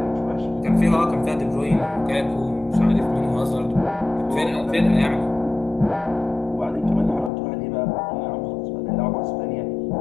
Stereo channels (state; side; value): drops out; right; at 7.3 s